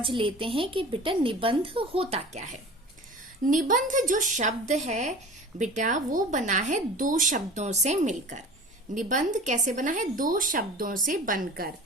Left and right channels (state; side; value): normal; both; correlation 0.39